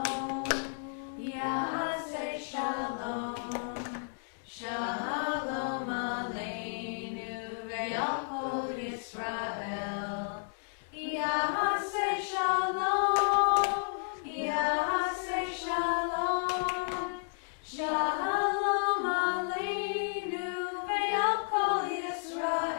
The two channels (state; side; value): silent; right; digital silence